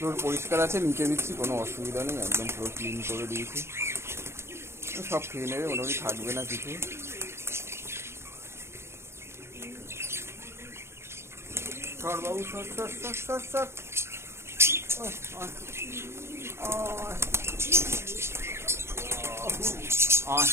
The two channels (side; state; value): left; late; 0.12 ms